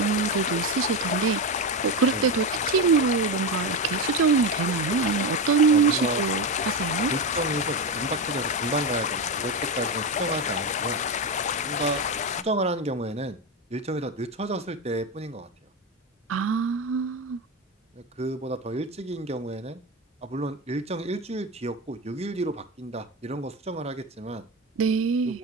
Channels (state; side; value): normal; both; correlation 0.15